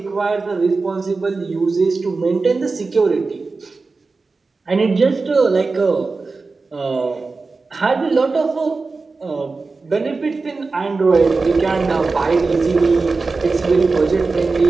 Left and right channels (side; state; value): left; quieter; 4.0 dB